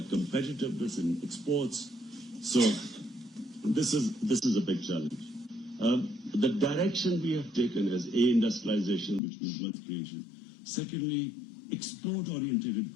competitiveness in exports. So this is a big challenge. The direction we have taken is industrialization, which means wealth creation. Secondly, export-oriented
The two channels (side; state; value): right; drops out; at 9.2 s